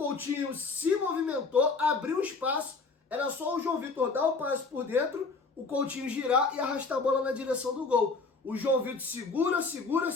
se movimentou, abriu espaço, era só o João Vitor dar o passe por dentro, o Coutinho girar e arrastar a bola na direção do gol. O João Vitor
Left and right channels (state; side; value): quieter; right; 4.2 dB